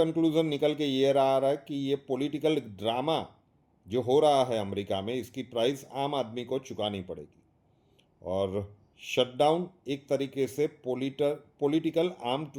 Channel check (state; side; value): identical; both; correlation 1.00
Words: निकल के ये रहा है कि ये पॉलिटिकल ड्रामा जो हो रहा है अमेरिका में, इसकी प्राइस आम आदमी को चुकानी पड़ेगी। और शटडाउन एक तरीके से पॉलिटिकल आर्म